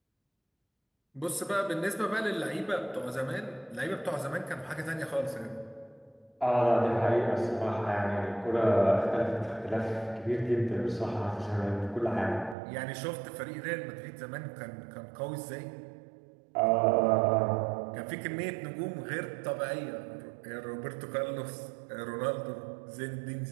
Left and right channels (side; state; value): left; drops out; at 12.6 s